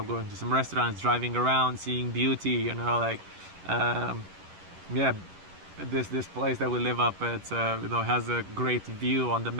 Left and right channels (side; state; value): left; late; 11 ms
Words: going to some restaurants, driving around, seeing beauty, you know, like yeah, this place that we live up at, you know, has a great view on the